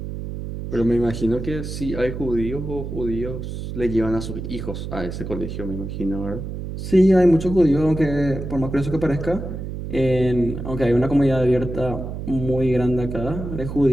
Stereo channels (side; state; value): right; noise; hum, 7 dB below the sound